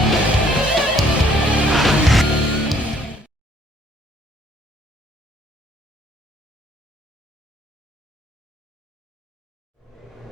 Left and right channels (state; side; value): normal; both; correlation 0.63